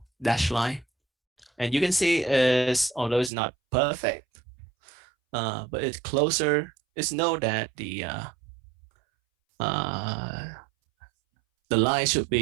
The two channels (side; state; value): left; drops out; at 3.3 s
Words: dash line. And you can see although it's not perfect, but it's closer. It's known that the line should